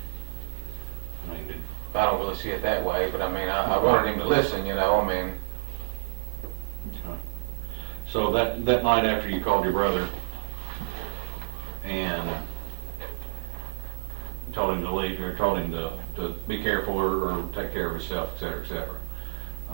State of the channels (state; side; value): silent; left; 56 dB below the other